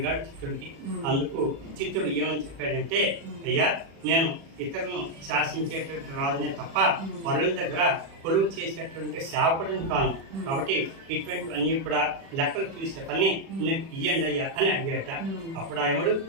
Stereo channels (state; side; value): late; left; 36 ms